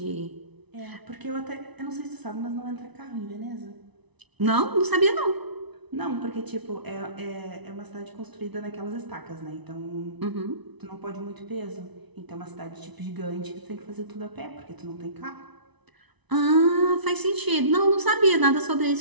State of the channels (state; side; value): late; left; 1.0 ms